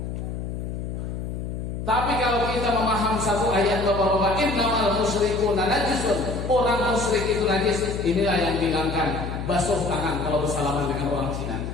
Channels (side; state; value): left; noise; hum, 5 dB below the sound